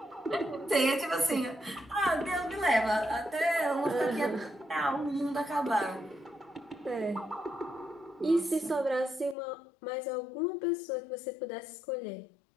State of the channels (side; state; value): right; drops out; at 9.3 s